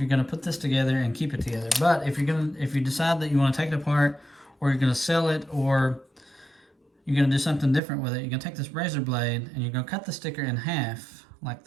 going to put this together and keep it together. But if you decide that you want to take it apart, or you're going to sell it, or you're going to do something different with it, you're going to take this razor blade and you're going to cut the sticker in half like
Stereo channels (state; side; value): drops out; left; at 7.8 s